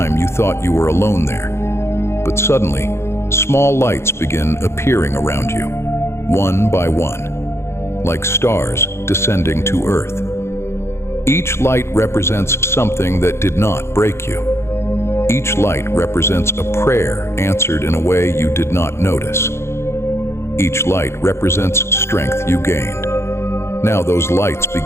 you thought you were alone there. But suddenly, small lights begin appearing around you, one by one, like stars descending to earth. Each light represents something that did not break you. Each light represents a prayer answered in a way you did not notice. Each light represents strength you gained. Now those lights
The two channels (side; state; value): right; late; 0.13 ms